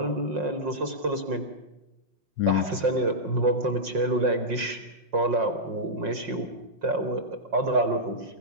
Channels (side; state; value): left; late; 5.6 ms